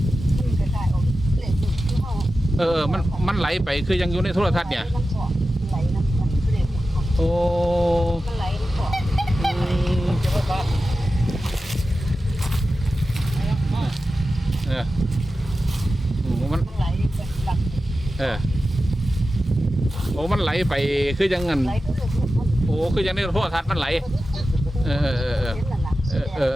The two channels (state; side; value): normal; both; correlation 0.93